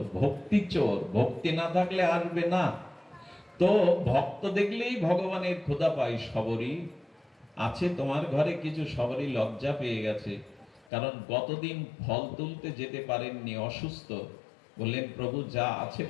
ভক্তি চোর, ভক্তি না থাকলে আসবে না। তো ভক্ত দেখলেই ভগবানের ক্ষুধা পাই। সবরী আছে তোমার ঘরে কিছু? সবরী লজ্জা পেয়ে গেছে, কারণ গতদিন ফল তুলতে যেতে পারেননি, অসুস্থ। বললেন, প্রভু যা আছে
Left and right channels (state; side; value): drops out; right; at 10.9 s